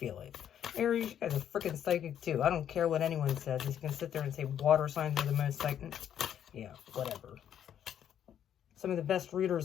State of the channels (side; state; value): right; quieter; 9.7 dB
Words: it. Aries, you guys are freaking psychic too. I don't care what anyone says. You can sit there and say water signs are the most psychic. Yeah, whatever. Some of the best